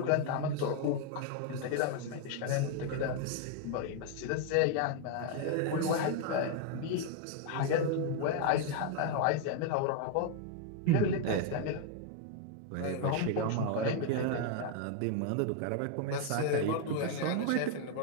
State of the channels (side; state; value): both; different; correlation 0.00